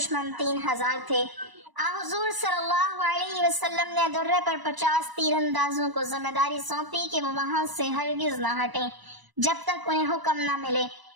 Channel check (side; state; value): left; late; 1.0 ms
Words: 3000 تھے۔ حضور صلی اللہ علیہ وسلم نے درے پر 50 تیر اندازوں کو ذمہ داری سونپی کہ وہ وہاں سے ہرگز نہ ہٹیں جب تک انہیں حکم نہ ملے۔